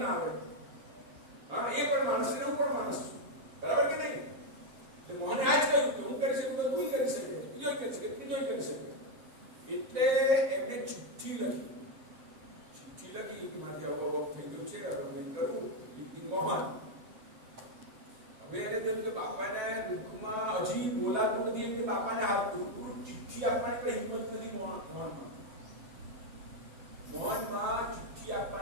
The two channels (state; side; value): late; left; 7.6 ms